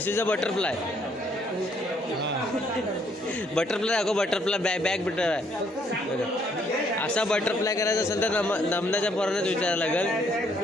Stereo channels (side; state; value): both; normal; correlation 0.68